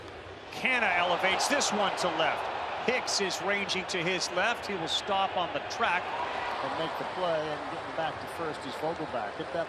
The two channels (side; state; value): both; identical; correlation 1.00